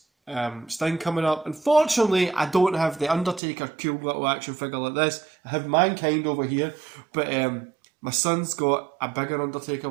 Sting coming up. Unfortunately, I don't have the Undertaker cool little action figure like this. I have Mankind over here, but my son's got a bigger Undertaker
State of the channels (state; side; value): drops out; left; at 3.4 s